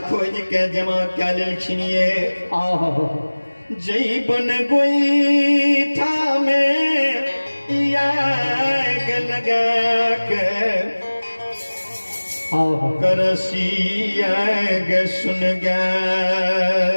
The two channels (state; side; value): inverted; both; correlation -1.00